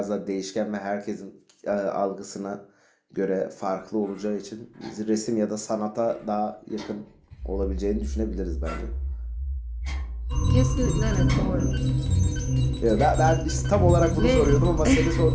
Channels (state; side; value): identical; both; correlation 1.00